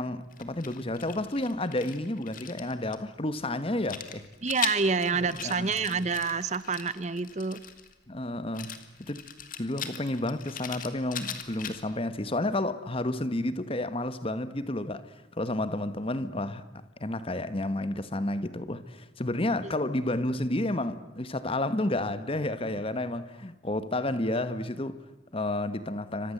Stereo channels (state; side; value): normal; both; correlation 0.44